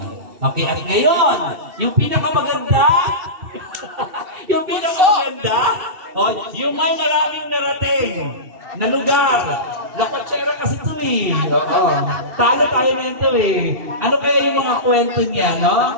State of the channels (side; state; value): left; late; 2.7 ms